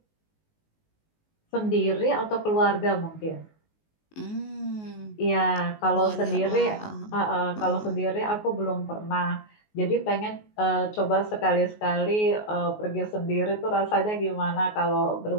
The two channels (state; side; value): late; right; 19 ms